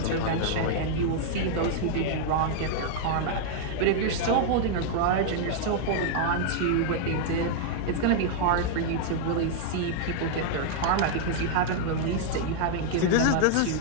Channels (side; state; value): both; different; correlation -0.01